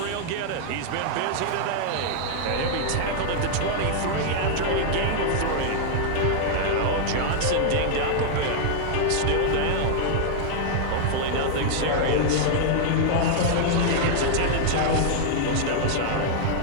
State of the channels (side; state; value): both; different; correlation -0.01